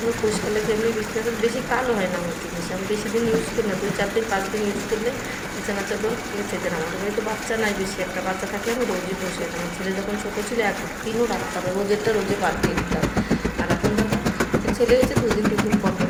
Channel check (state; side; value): identical; both; correlation 1.00